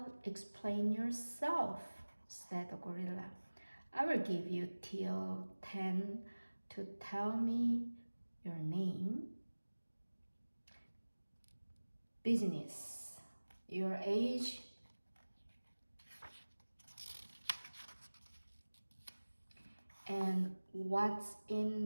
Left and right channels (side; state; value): both; inverted; correlation -1.00